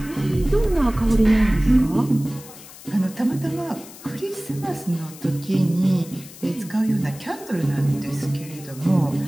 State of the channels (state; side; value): noise; left; hiss, 18 dB below the sound